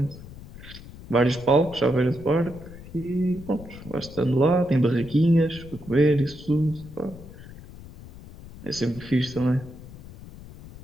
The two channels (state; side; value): noise; left; rumble, 16 dB below the sound